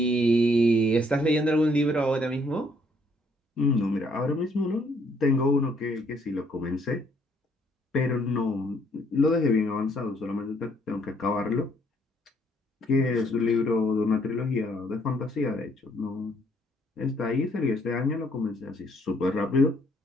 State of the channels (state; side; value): normal; both; correlation 0.67